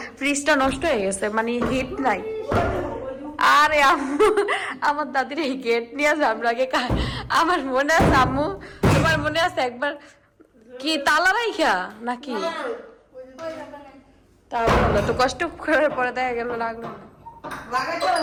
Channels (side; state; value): both; identical; correlation 1.00